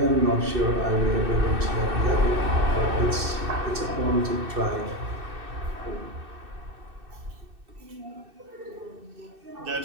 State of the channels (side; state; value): left; late; 2.6 ms